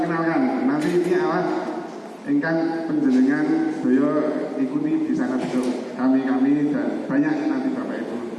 nanti ini awas ingkang penjenengan beliau ikuti di sana besok kami dan banyak nanti Bapak Ibu.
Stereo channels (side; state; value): both; identical; correlation 1.00